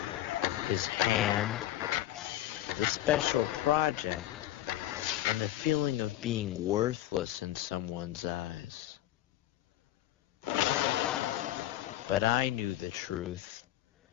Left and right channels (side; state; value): right; quieter; 14.0 dB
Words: his hand, the special project, and the feeling of being worthless in someone's eyes. But I knew the truth.